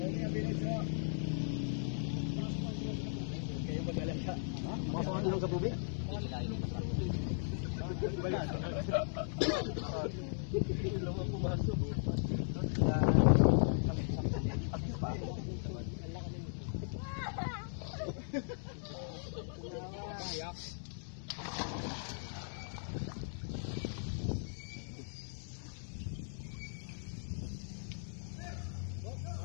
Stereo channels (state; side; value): silent; right; digital silence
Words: Masok ang ilong sa tubig? Ilong ang pumasok.